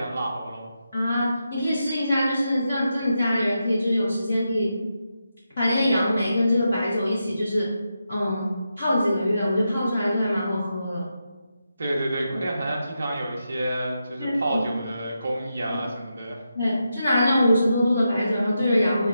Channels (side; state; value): both; inverted; correlation -0.86